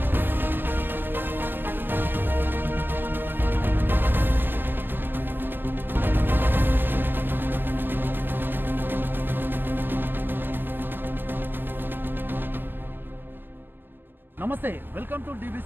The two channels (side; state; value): left; late; 0.095 ms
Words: నమస్తే, welcome to